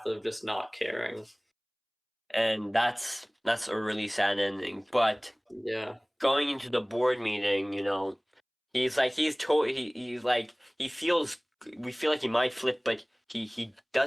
of just not caring. And that's a really sad ending. But Yeah. going into the board meeting, he's like he's like he feels we feel like he might flip, but he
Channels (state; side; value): identical; both; correlation 1.00